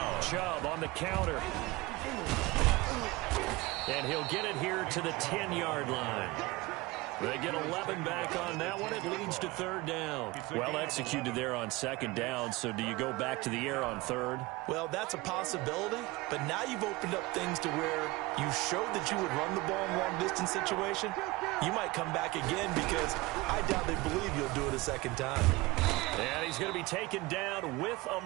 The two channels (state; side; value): quieter; left; 21.3 dB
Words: Chubb on the counter. And he'll get it here to the 10-yard line. They get 11 back on that one. It leads to 3rd down. Well executed there on 2nd down. So do you go back to the air on 3rd? Well, that's a possibility, but now you've opened up things to where you showed that you would run the ball in long-distance situation. You might come back again because I doubt they believe you'll do it a 2nd time. And he's going to be taken down with a